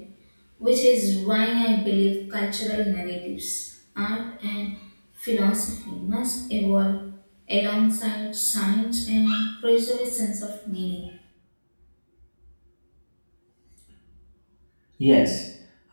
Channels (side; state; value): both; inverted; correlation -1.00